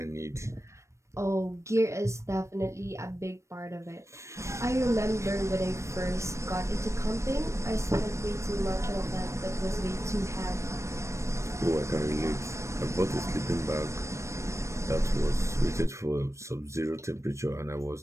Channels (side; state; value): left; late; 0.14 ms